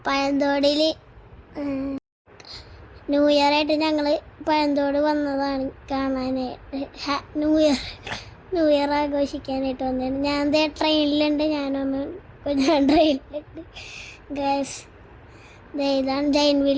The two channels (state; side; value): identical; both; correlation 1.00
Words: പഴന്തോടിൽ ന്യൂ ഇയർ ആയിട്ട് ഞങ്ങൾ പഴന്തോട് വന്നതാണ് കാണാനായിട്ട്. ന്യൂ ഇയർ ആഘോഷിക്കാനായിട്ട് വന്നതാണ്. ഞാൻ ട്രെയിനിലുണ്ട്, ഞാൻ ട്രെയിനിലുണ്ട് ഗൈസ്. ഇതാണ് ജൈൻ